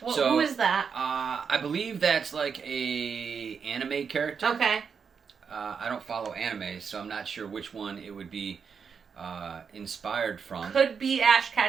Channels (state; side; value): quieter; left; 6.3 dB